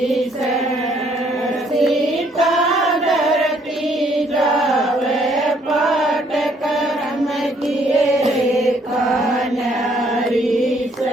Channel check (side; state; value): both; normal; correlation 0.66